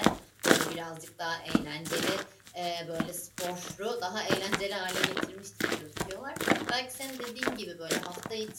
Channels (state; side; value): identical; both; correlation 1.00